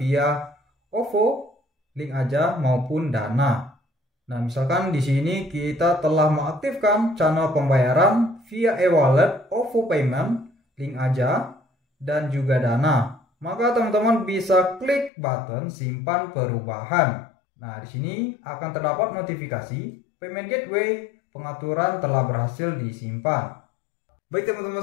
OVO, link aja maupun Dana. Nah, misalkan di sini kita telah mengaktifkan channel pembayaran via e-wallet, OVO Payment, link aja, dan juga Dana. Maka teman-teman bisa klik button simpan perubahan. Nah, di sini akan terdapat notifikasi payment gateway pengaturan telah berhasil disimpan. Baik teman-teman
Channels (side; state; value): right; drops out; at 15.1 s